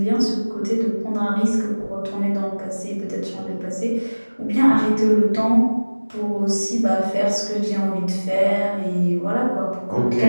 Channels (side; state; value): both; inverted; correlation -1.00